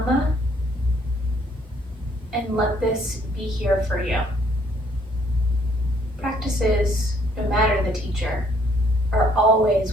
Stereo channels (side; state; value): both; normal; correlation 0.65